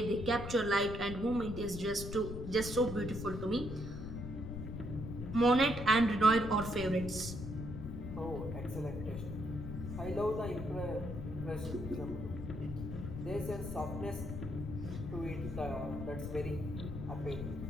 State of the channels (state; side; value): noise; left; rumble, 7 dB below the sound